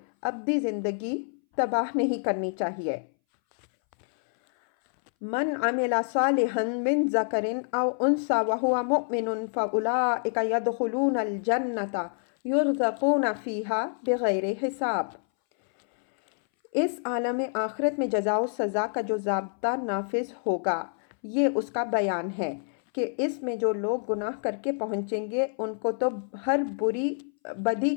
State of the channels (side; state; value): right; silent; 60 dB below the other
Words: ابدی زندگی تباہ نہیں کرنی چاہیے۔ من عمل صالحا من ذکر او انثی وہو مؤمن فاولئک یدخلون الجنۃ یرزقون فیہا بغیر حساب۔ اس عالم آخرت میں جزا و سزا کا جو ضابطہ نافذ ہوگا، یہ اس کا بیان ہے کہ اس میں جو لوگ گناہ کر کے پہنچیں گے ان کو تو ہر بدی